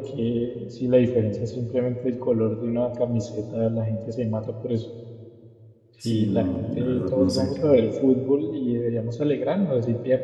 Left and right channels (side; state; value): both; identical; correlation 1.00